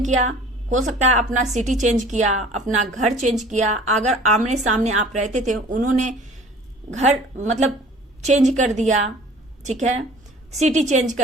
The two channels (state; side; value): normal; both; correlation 0.47